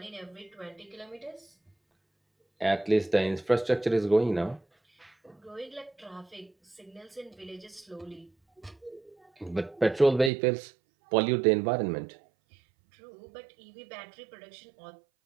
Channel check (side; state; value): left; drops out; at 10.3 s